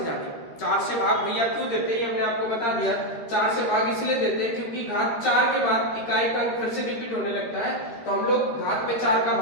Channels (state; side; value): late; right; 13 ms